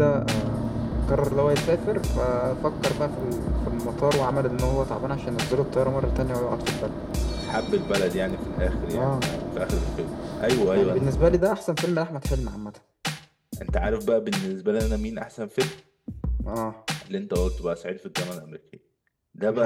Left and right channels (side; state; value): both; identical; correlation 1.00